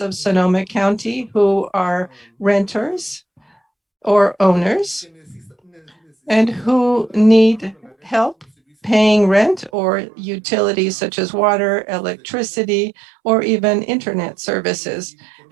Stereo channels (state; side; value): drops out; left; at 9.7 s